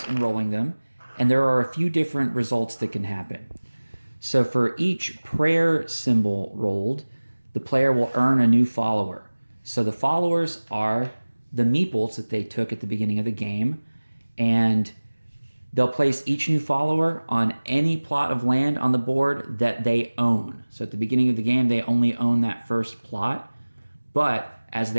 and rolling them, and there are a few different results that can happen. So for each prayer symbol rolled, the player will earn a new follower. So the followers are the meeples that they took at the beginning of the game, and they'll place each new follower on any plot of land on the board that they own. So at the beginning of the game, they only own that first plot, but as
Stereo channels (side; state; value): both; inverted; correlation -1.00